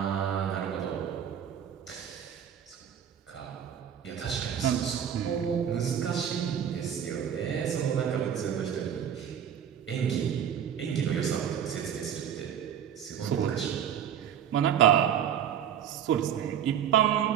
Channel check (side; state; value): left; quieter; 9.0 dB